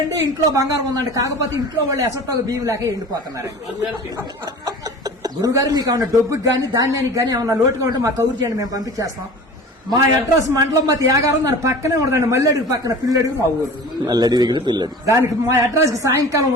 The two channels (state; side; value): normal; both; correlation 0.39